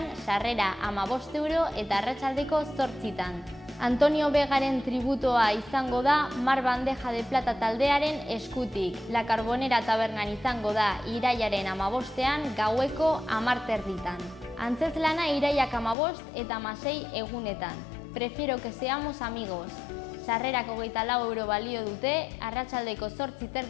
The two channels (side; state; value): right; drops out; at 16.0 s